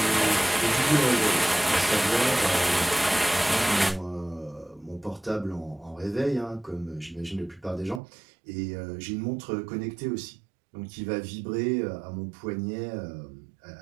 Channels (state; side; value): drops out; left; at 8.0 s